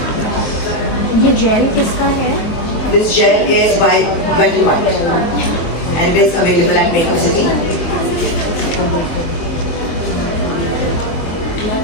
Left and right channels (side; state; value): right; late; 23 ms